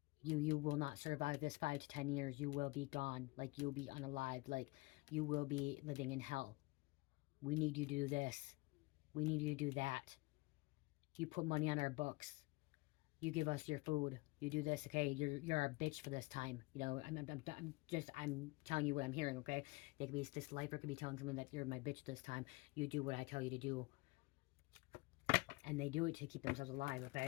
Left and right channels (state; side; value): quieter; right; 24.0 dB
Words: You will not survive this 5 to 10 years. You will be gone. Like, you'll be unalived. Like, you will be living in hell. We need you to do this. We need you to do that. You put money on our books. You give us your food. You do this, okay? You're our bitch for this time. You know, I'm telling you what I'm hearing, okay? They could be, this lifer could be telling somebody that you're my bitch this time. You do what I tell you to do. And they do it to keep themselves alive,